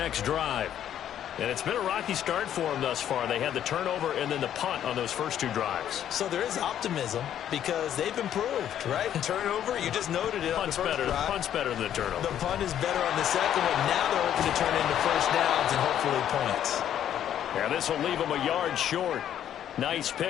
drive. And it's been a rocky start for them thus far. They had the turnover and then the punt on those first 2 drives. So there is optimism because they've improved, right? Turnover, you just noted it on the first drive. Punt's better than the turnover. The punt is better on the second one. Now they're hoping to turn into first downs and hopefully points. Yeah, this will leave them a yard short. Nice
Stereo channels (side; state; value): right; quieter; 10.4 dB